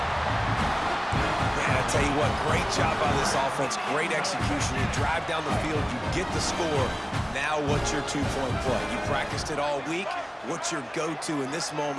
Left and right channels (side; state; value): both; identical; correlation 1.00